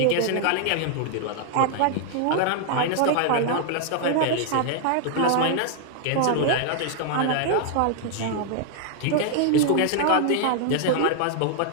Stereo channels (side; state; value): both; different; correlation 0.00